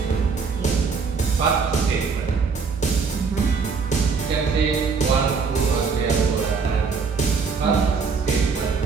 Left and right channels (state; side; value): quieter; left; 5.2 dB